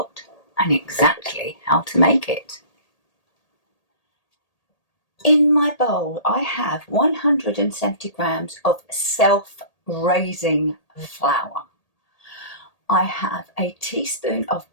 and exactly how to make it. In my bowl, I have 170 grams of self-raising flour. I have a teaspoon of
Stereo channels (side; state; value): right; late; 1.8 ms